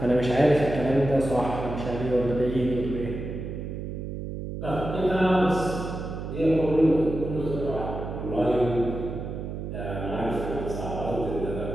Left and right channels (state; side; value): noise; right; hum, 6 dB below the sound